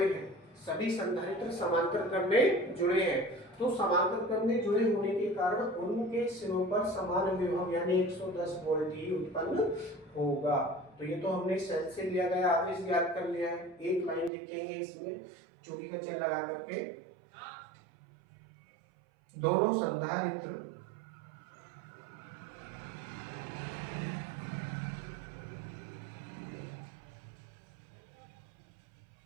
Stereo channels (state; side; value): drops out; left; at 14.3 s